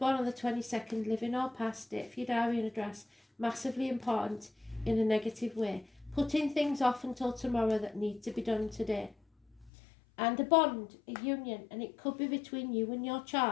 on the 22nd, living or past it, for your diary and address, massively important in a negative way. Putting things off until tomorrow that need to be done today. And a bond, a union, and it could be between you and your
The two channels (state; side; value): drops out; right; at 9.7 s